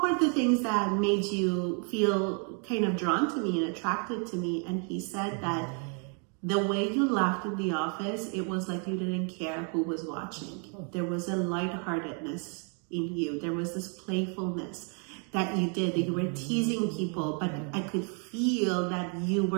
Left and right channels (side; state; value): left; quieter; 39.6 dB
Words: were the things that made you feel kind of drawn to me and attracted to me? And he said that the way you laughed in the office, it was like you didn't care who was watching. There was a lightheartedness in you. There was this playfulness that you did, that you were teasing people, but I could feel that you